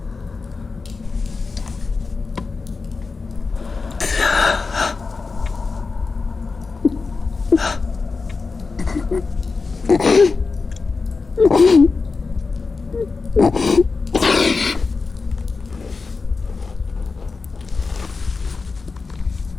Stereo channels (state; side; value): quieter; right; 4.3 dB